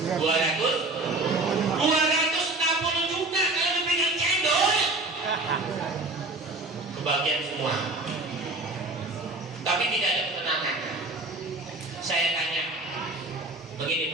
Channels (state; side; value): quieter; left; 3.0 dB